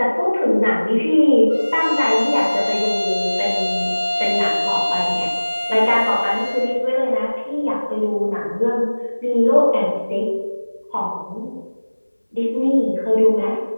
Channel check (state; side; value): inverted; both; correlation -1.00